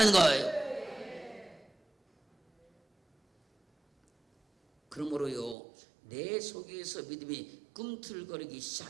거예요. 그러므로요, 내 속에서 믿음이 꿈틀거리기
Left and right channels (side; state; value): left; drops out; at 5.6 s